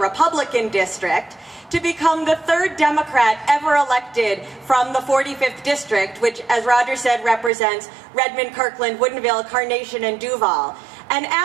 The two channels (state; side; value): drops out; left; at 7.5 s